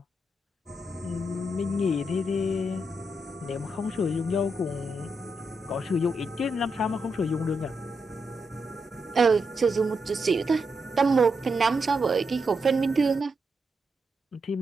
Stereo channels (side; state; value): both; normal; correlation 0.84